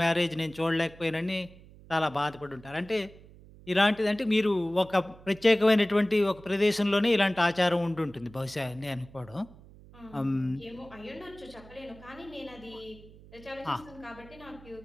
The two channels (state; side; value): noise; right; hum, 21 dB below the sound